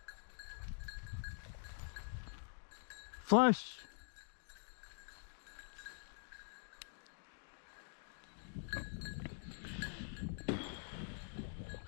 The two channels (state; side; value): silent; right; digital silence